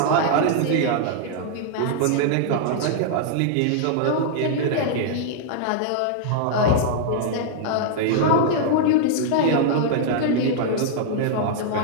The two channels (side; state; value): both; different; correlation -0.01